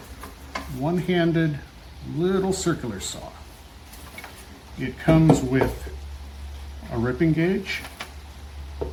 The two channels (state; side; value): identical; both; correlation 1.00